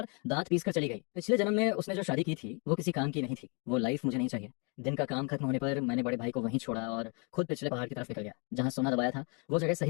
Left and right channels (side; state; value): right; quieter; 34.9 dB